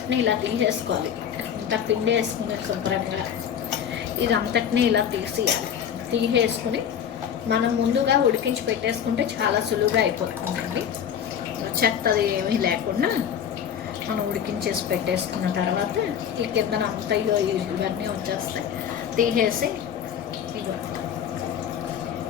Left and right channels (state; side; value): quieter; right; 8.7 dB